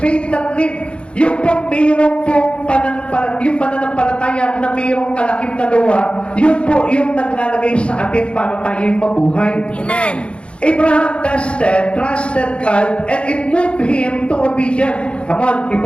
faith that live. Yung pong mayroong pong yung pananampalataya na mayroong kalakip na gawa, yun po yung naglalagay sa atin para tayo'y mabuhay. Amen. Abraham trusted God, and it moved him to obedience. Come on,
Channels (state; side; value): late; right; 0.058 ms